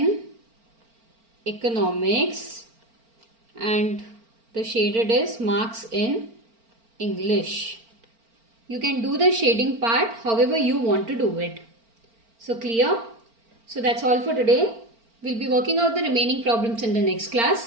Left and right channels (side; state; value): left; late; 4.4 ms